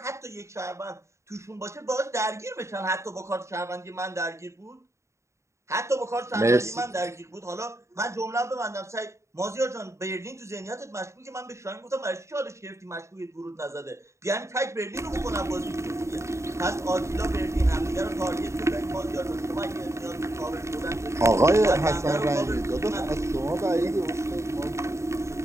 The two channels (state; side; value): late; left; 0.14 ms